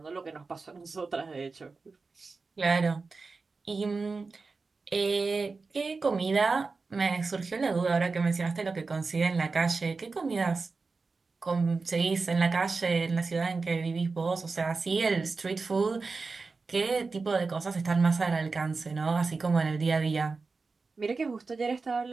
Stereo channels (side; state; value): left; quieter; 4.2 dB